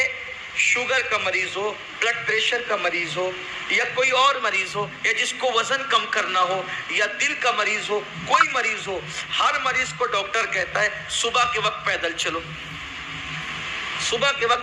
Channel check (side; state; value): both; identical; correlation 1.00